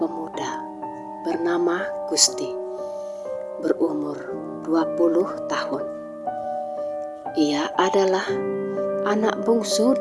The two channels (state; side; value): identical; both; correlation 1.00